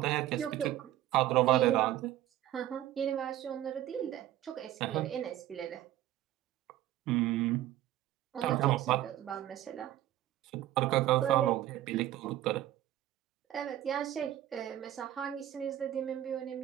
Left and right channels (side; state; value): left; quieter; 13.3 dB